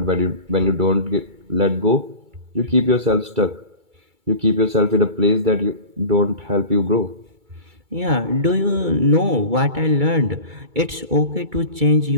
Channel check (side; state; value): left; late; 2.3 ms